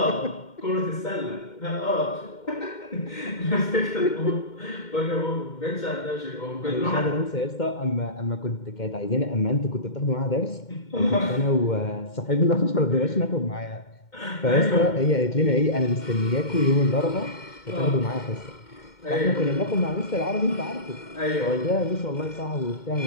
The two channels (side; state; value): right; late; 2.1 ms